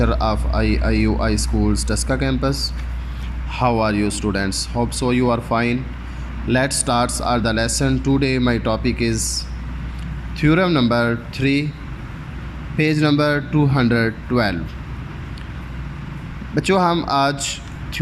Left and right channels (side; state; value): both; identical; correlation 1.00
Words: of IUI Schools Taska campus. How are you students? Hope so you are fine. Let's start the lesson. Today my topic is theorem number 3, page number 212. बच्चों हम आज